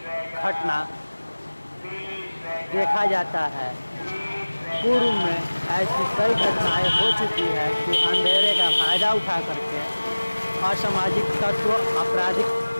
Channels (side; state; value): both; inverted; correlation -1.00